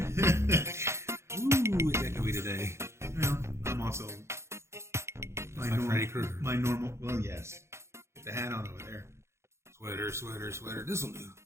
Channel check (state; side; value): late; left; 0.13 ms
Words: Ooh, it's echoey today. Well, I'm also Freddy Krueger. My normal. Well, yes. Get the hat on over there. Sweater. This'll do.